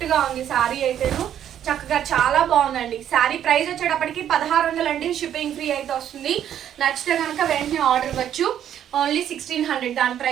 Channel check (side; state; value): left; quieter; 10.2 dB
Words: గా ఉంది సారీ అయితేను. చక్కగా చాలా బాగుందండి. శారీ ప్రైస్ వచ్చేటప్పటికి 1600 అండి, షిప్పింగ్ ఫ్రీ అయితే వస్తుంది. నచ్చితే కనుక వెంటనే ఆర్డర్ ఇవ్వచ్చు. ఓన్లీ 1600 దాని